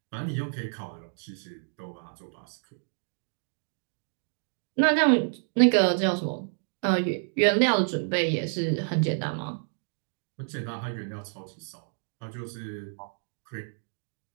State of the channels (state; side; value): silent; left; digital silence